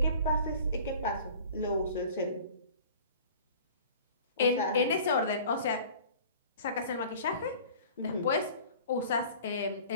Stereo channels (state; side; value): inverted; both; correlation -0.45